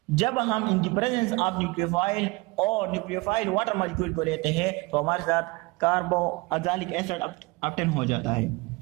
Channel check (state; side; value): quieter; left; 24.8 dB